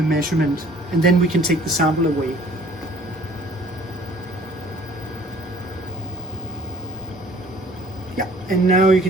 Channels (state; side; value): normal; both; correlation 0.54